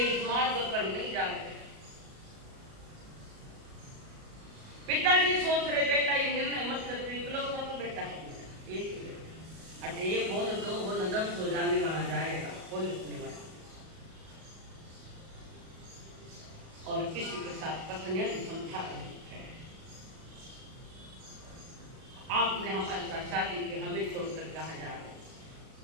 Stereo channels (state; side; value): late; left; 37 ms